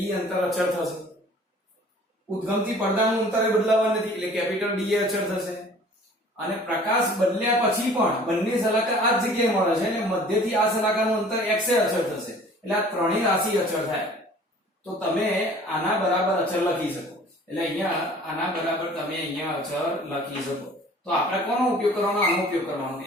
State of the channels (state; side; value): normal; both; correlation 0.49